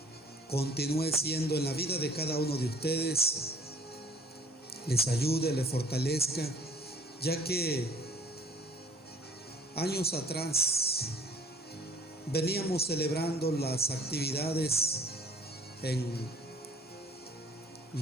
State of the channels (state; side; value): normal; both; correlation 0.52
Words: continúe siendo en la vida de cada uno de ustedes, les ayude, les fortalezca, ya que años atrás veníamos celebrando las actividades en